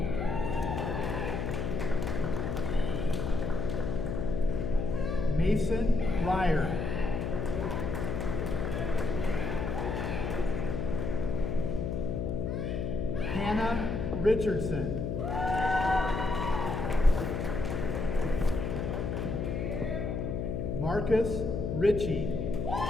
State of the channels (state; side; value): noise; left; hum, 1 dB below the sound